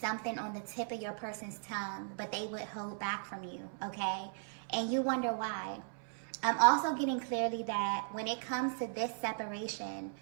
on the tip of your person's tongue, but they would hold back from you, okay? And you wonder why. I'm also getting clearly that when it comes to this separation,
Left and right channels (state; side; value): silent; left; 53 dB below the other